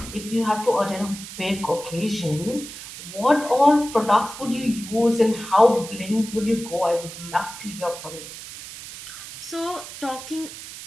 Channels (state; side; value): noise; right; hiss, 12 dB below the sound